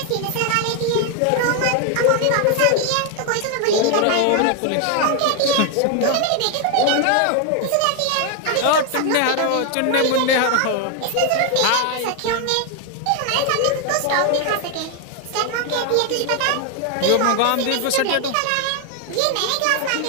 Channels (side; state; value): both; different; correlation 0.01